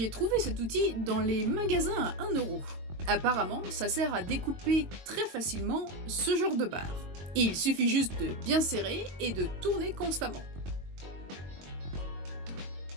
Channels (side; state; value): left; late; 22 ms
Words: trouvé cet outil dans les magasins à 1 €. Apparemment, ça sert à découper très facilement ce genre de barre. Il suffit juste de bien serrer et de tourner constamment.